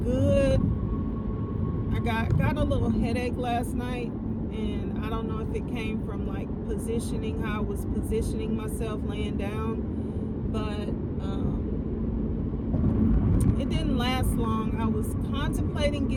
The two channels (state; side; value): identical; both; correlation 1.00